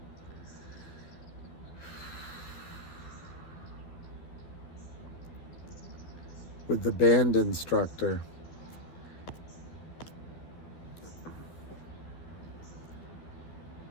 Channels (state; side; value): late; right; 12 ms